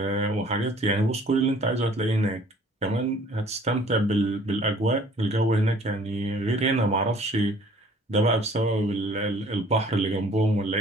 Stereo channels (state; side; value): normal; both; correlation 0.54